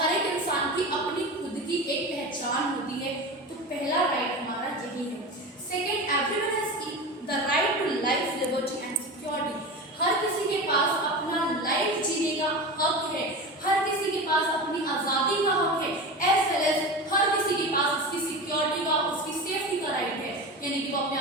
एक इंसान की अपनी खुद की एक पहचान होती है। तो पहला राइट हमारा यही है। Second, everyone has the right to life, liberty and security. हर किसी के पास अपना लाइफ जीने का हक है, हर किसी के पास अपनी आज़ादी का हक है, एज वेल एज हर किसी के पास उसकी सिक्योरिटी का, उसकी सेफ्टी का राइट है, यानी कि वो अपने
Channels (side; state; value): both; normal; correlation 0.27